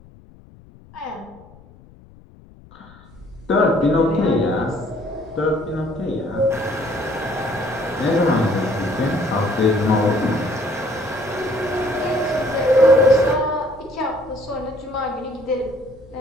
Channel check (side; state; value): left; noise; rumble, 24 dB below the sound